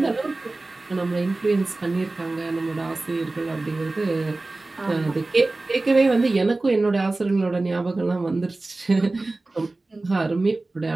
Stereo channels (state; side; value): quieter; left; 3.1 dB